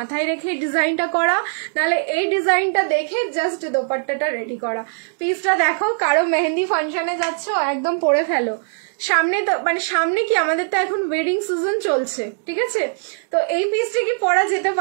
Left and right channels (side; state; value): left; silent; digital silence